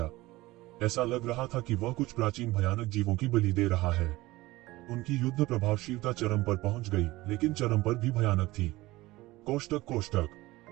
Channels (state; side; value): quieter; left; 19.2 dB